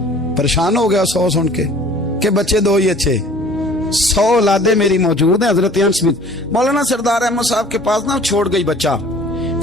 परेशान हो गया 100 सुन के बच्चे 2 ही अच्छे, 100 औलादे मेरी मौजूद हैं। हजरत अनस बिन मौलाना सरदार अहमद साहब के पास ना छोड़ गई बच्चा,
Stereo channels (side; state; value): both; normal; correlation 0.50